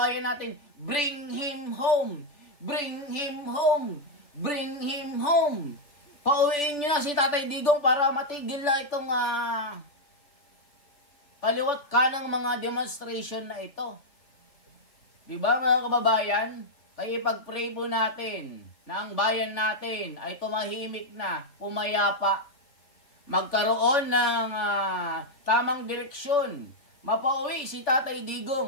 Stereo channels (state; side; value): late; right; 3.4 ms